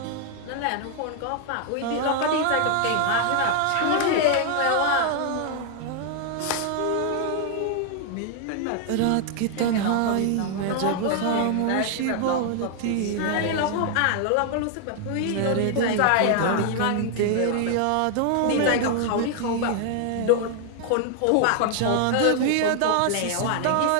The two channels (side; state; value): both; different; correlation 0.00